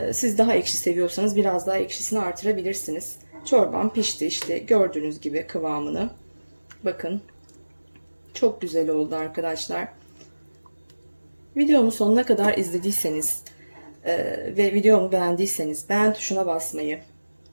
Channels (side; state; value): both; inverted; correlation -1.00